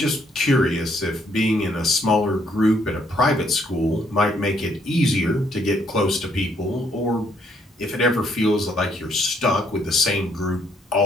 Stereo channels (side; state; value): both; normal; correlation 0.69